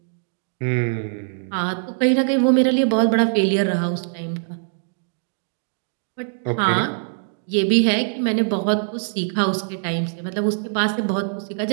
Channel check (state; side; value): silent; left; digital silence